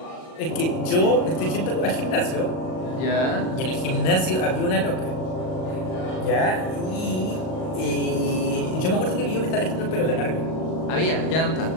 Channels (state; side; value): late; right; 38 ms